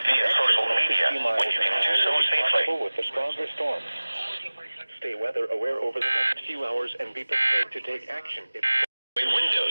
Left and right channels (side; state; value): both; inverted; correlation -1.00